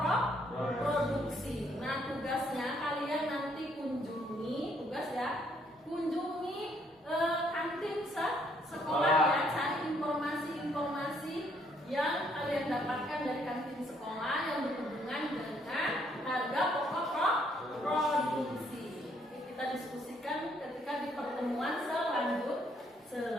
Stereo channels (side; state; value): both; normal; correlation 0.68